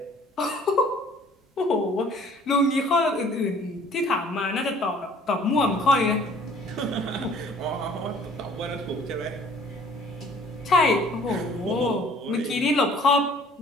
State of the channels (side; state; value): both; normal; correlation 0.54